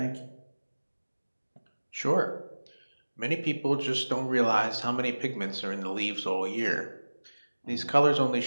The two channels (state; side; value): inverted; both; correlation -1.00